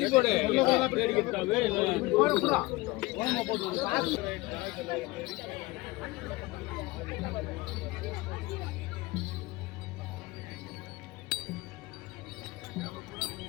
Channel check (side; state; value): right; quieter; 21.2 dB